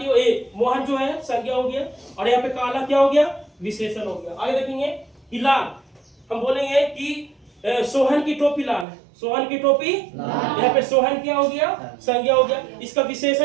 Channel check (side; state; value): left; drops out; at 8.8 s